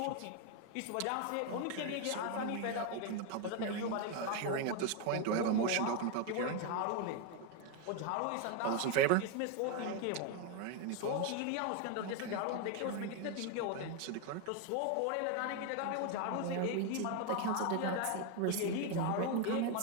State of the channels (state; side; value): different; both; correlation 0.01